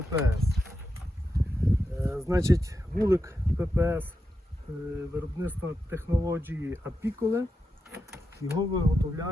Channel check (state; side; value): normal; both; correlation 0.87